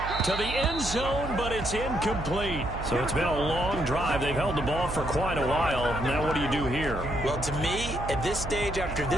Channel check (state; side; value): noise; right; hum, 8 dB below the sound